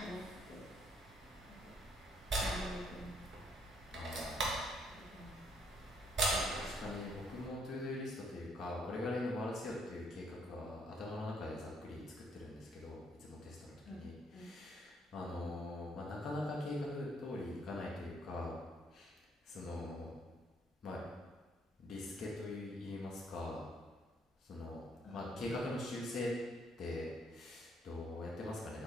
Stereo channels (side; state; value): both; normal; correlation 0.69